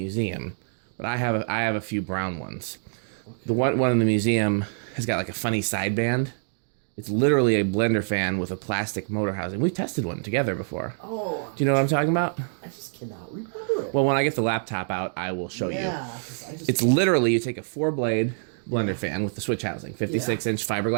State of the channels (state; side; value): silent; left; digital silence